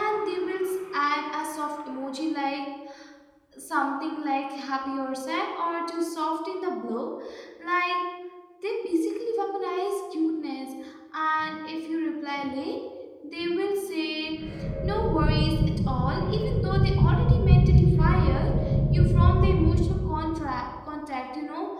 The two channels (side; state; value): both; identical; correlation 1.00